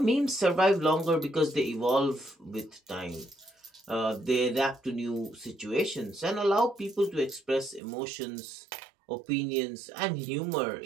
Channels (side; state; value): left; drops out; at 7.8 s